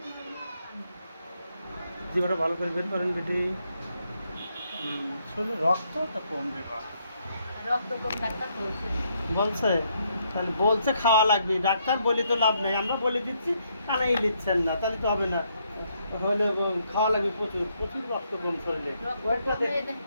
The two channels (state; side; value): inverted; both; correlation -0.74